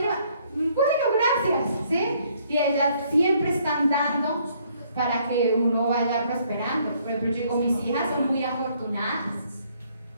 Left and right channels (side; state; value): both; inverted; correlation -0.66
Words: bueno, gracias, ¿sí? Y ellas siempre están dando para que uno vaya prosperando. Por ejemplo, yo digo, mis hijas son muy afortunadas.